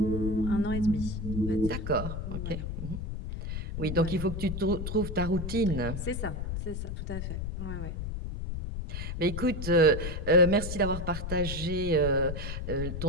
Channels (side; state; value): left; noise; rumble, 4 dB below the sound